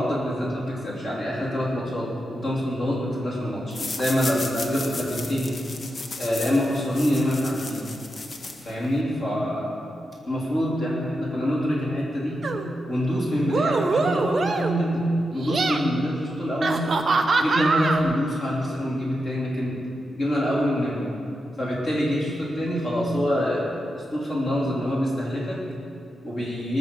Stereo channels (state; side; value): normal; both; correlation 0.87